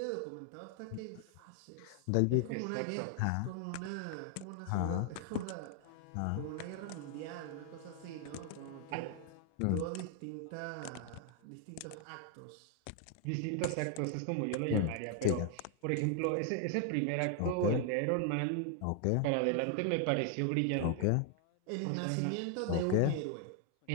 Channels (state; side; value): different; both; correlation 0.00